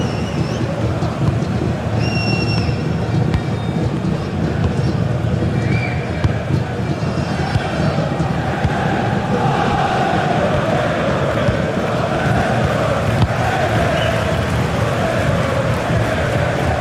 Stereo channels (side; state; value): both; identical; correlation 1.00